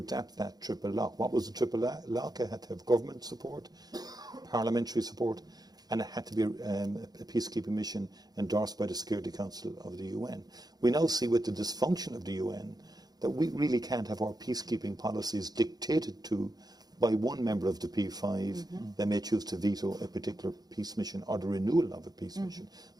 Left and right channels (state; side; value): late; left; 0.19 ms